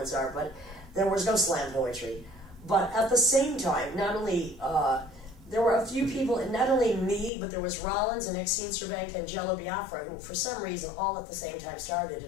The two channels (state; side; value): drops out; right; at 7.3 s